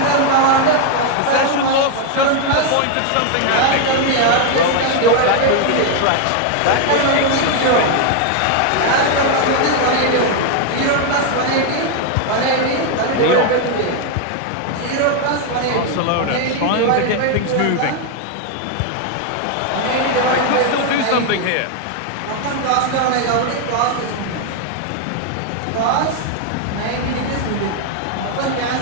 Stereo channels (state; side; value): different; both; correlation 0.01